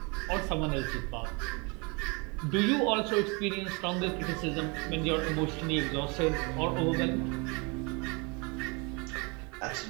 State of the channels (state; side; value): quieter; left; 30.2 dB